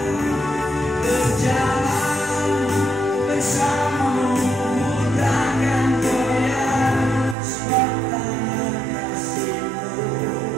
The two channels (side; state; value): left; drops out; at 7.4 s